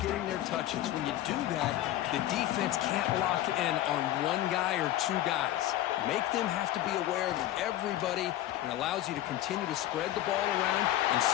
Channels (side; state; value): right; quieter; 13.9 dB